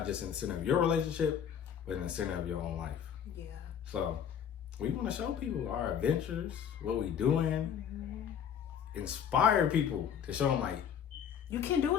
just in the center of your relationship, but in the center of your own life. Yeah. So we want to show people our adventures, what we doing, inspire people to show them like, you can do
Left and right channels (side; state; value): right; quieter; 8.4 dB